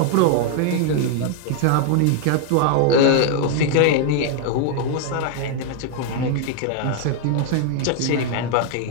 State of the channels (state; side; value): different; both; correlation 0.00